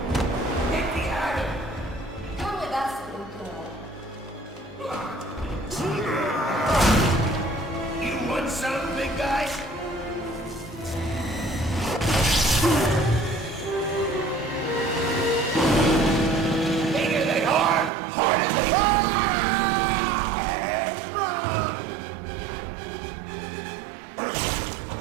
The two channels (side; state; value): left; drops out; at 17.9 s